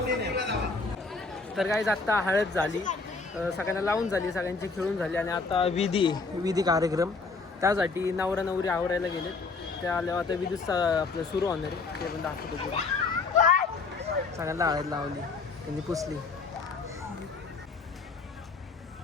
तर गाईज आता हळद झाली, सगळ्यांना लावून झाली, सगळ्यांची खेळून झाली. आणि आता विधी कार्यक्रम, त्यासाठी नवरा नवरी आवरायला गेलेत. त्या आल्यावर आता विधी आपलं सुरू होणार आहे, ते पण दाखवतो पुढे. सगळ्यांना हळद लावली, त्यांनी पुसली.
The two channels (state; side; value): quieter; right; 4.2 dB